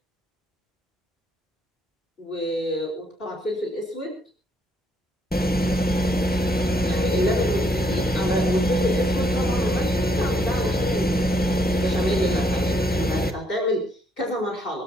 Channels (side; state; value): both; normal; correlation 0.71